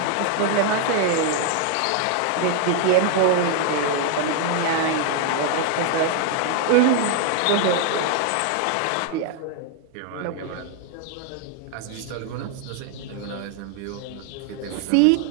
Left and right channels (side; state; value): both; different; correlation 0.00